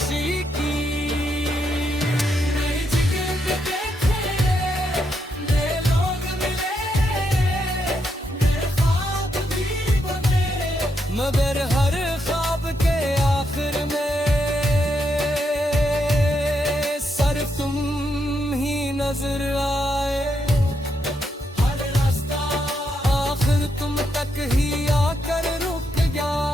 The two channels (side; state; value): both; normal; correlation 0.80